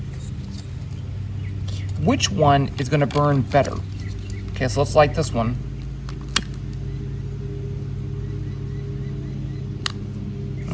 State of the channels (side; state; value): both; identical; correlation 1.00